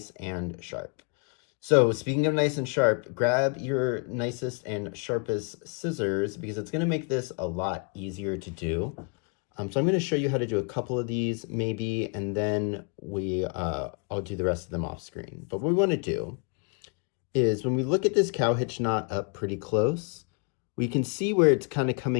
and sharp. So speaking of nice and sharp, grab your nicest and sharpest scissors because it's gonna make this a lot easier to do. So I'm going to show you how to do a couple of these maybe, and then I'll do the rest of them off screen. But what we want to do is when we look at this cow hitch knot up pretty close, we can see where it's kind of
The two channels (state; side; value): quieter; right; 37.8 dB